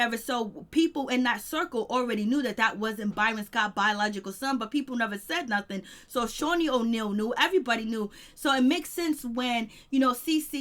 So people in that circle already knew that wasn't Byron Scott's biological son, but people never said nothing. So Shaunie O'Neal knew, everybody knew. So it makes sense when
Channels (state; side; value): identical; both; correlation 1.00